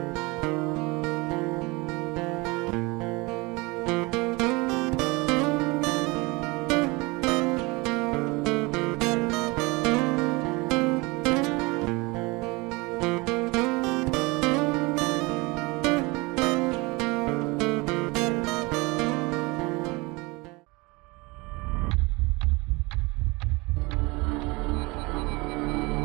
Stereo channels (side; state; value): left; quieter; 25.2 dB